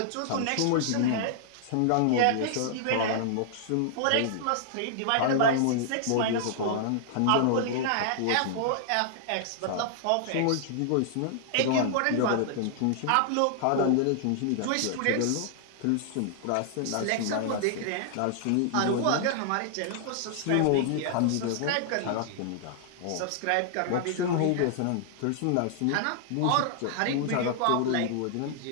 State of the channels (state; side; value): different; both; correlation -0.01